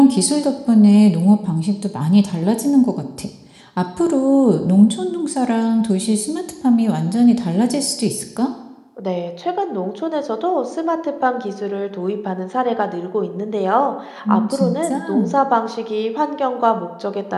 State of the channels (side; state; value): both; identical; correlation 1.00